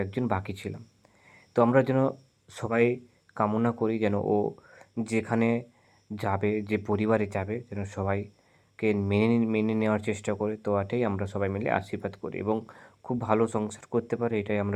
বাকি ছিলাম। তো আমরা যেন সবাই কামনা করি যেন ও যেখানে যাবে, যে পরিবারে যাবে, যেন সবাইকে মেনে নেওয়ার চেষ্টা করে। তো এটাই আমরা সবাই মিলে আশীর্বাদ করি এবং খুব ভালো সংসার করতে পারে, এটাই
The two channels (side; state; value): both; identical; correlation 1.00